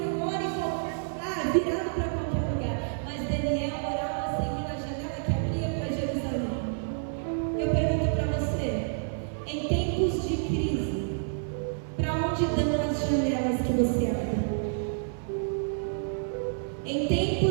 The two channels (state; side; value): silent; left; digital silence